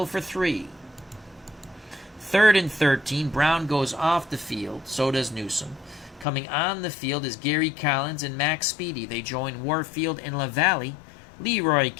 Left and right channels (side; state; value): right; drops out; at 6.2 s